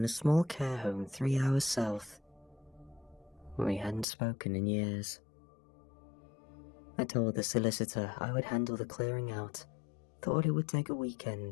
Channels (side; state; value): right; drops out; at 4.0 s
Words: a small care home 3 hours south. We hadn't spoken in years. I told the solicitor I would handle the clearing out, thought it would take a